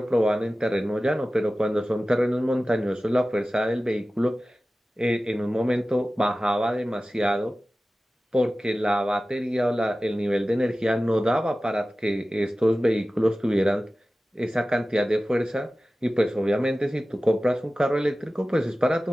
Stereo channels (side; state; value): both; normal; correlation 0.96